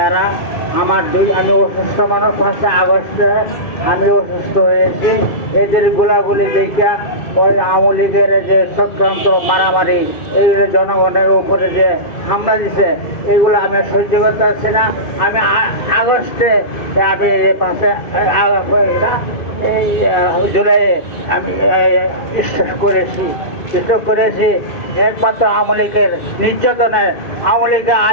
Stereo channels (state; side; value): late; right; 2.6 ms